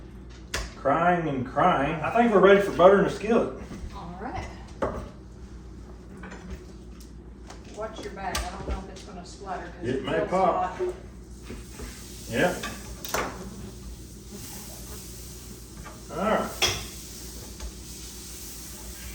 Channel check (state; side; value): identical; both; correlation 1.00